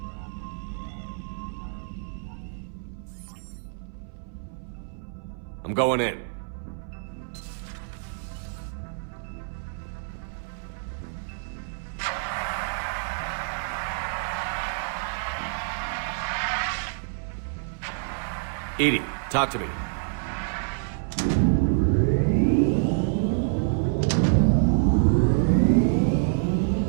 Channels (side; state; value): left; silent; 59 dB below the other